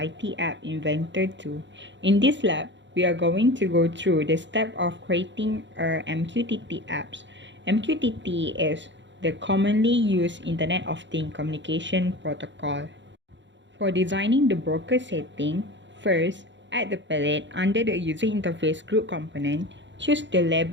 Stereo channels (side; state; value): left; late; 0.53 ms